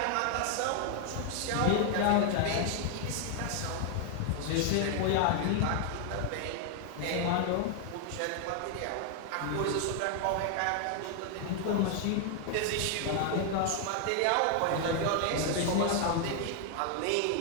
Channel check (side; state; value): both; different; correlation 0.00